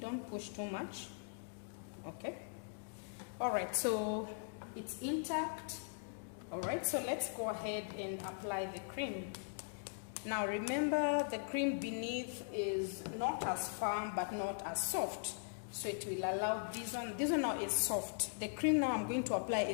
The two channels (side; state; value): right; silent; digital silence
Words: push too much. Okay. All right, so it's intact. All right, so let's go ahead and apply the cream. Now remember, the cream beneath is not as firm but not as soft, so it will allow this one now is soft. The cream now I'm going to apply